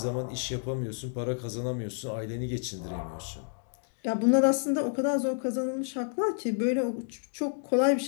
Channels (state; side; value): silent; right; digital silence